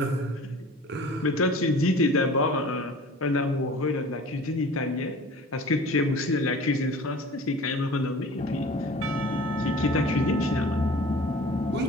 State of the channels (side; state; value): both; normal; correlation 0.43